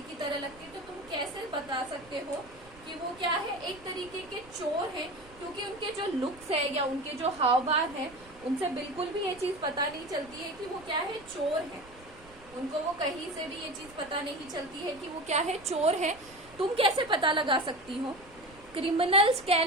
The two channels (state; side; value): noise; right; rumble, 23 dB below the sound